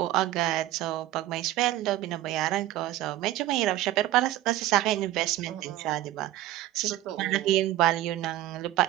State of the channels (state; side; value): quieter; left; 14.7 dB